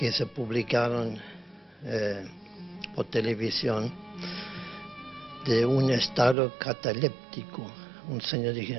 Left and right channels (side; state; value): left; drops out; at 6.4 s